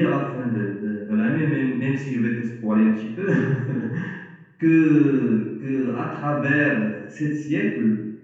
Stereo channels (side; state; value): both; identical; correlation 1.00